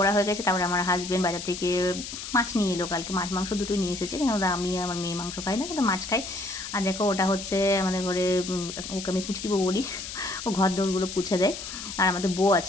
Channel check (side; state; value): left; noise; hiss, 9 dB below the sound